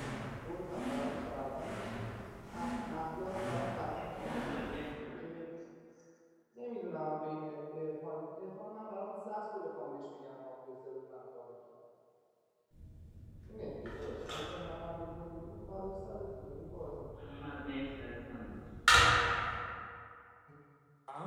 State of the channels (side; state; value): both; identical; correlation 1.00